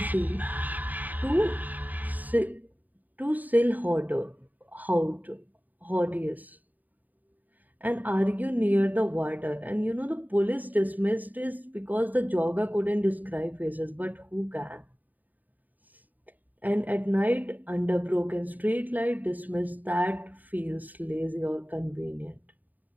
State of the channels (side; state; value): left; late; 0.083 ms